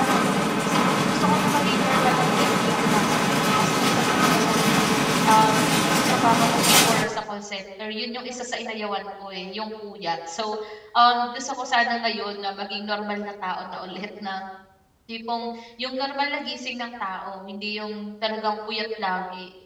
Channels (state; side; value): identical; both; correlation 1.00